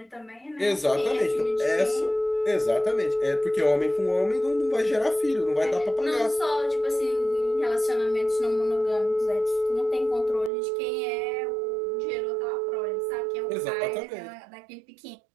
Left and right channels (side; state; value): left; drops out; at 10.5 s